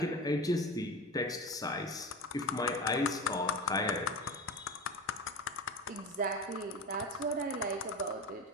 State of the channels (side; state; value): both; normal; correlation 0.28